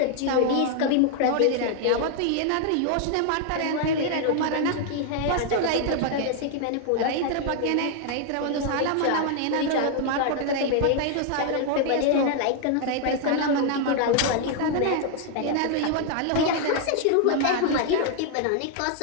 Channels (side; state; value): both; different; correlation 0.00